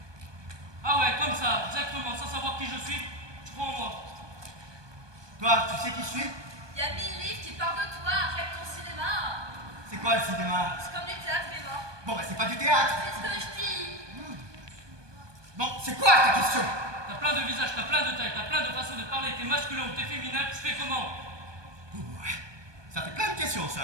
Ah ouais, comme ça, exactement, sans savoir qui je suis, tu crois en moi. Toi, tu sais qui je suis? Il y a 1000 livres qui parlent de toi. Arrête ton cinéma. C'est quoi le cinéma? C'est comme du théâtre, mais bon. Bon, bah c'est pas du théâtre. C'est ce que je dis. Bon, c'est quoi ta question? T'as plein de visages, t'as plein de tailles, t'as plein de façons de parler, t'es masculin ou t'es féminin, tu fais comment? Ça fait plein de questions,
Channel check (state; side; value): late; left; 1.2 ms